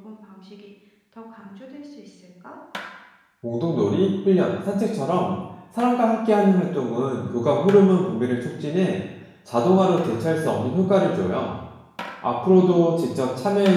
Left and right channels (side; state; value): both; identical; correlation 1.00